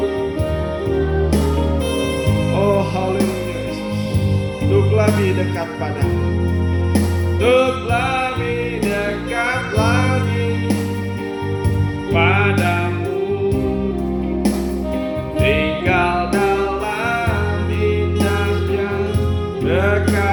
oh haleluya Yesus, untuk lebih dekat padamu, untuk lebih dekat lagi padamu, tinggal dalam indahnya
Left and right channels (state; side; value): identical; both; correlation 1.00